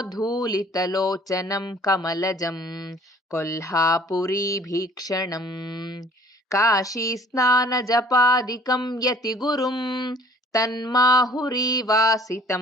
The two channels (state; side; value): normal; both; correlation 0.54